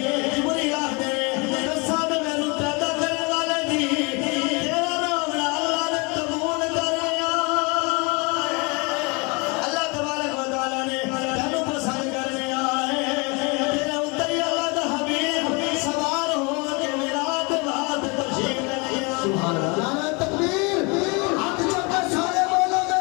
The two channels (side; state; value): right; quieter; 29.5 dB